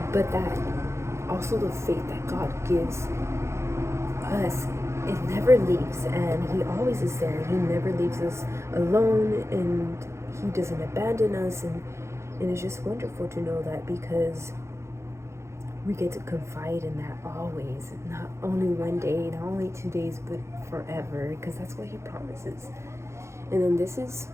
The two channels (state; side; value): late; left; 0.13 ms